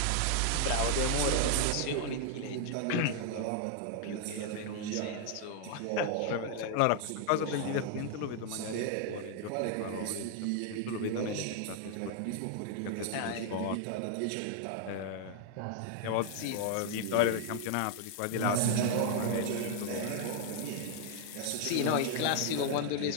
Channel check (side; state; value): both; different; correlation 0.00